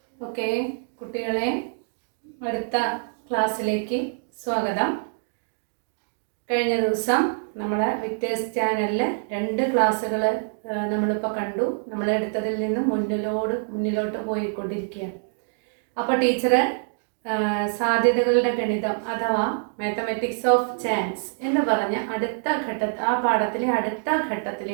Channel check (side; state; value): left; silent; digital silence